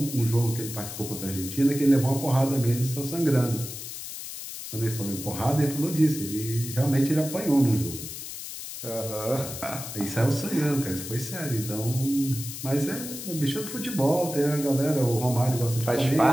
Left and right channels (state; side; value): noise; left; hiss, 9 dB below the sound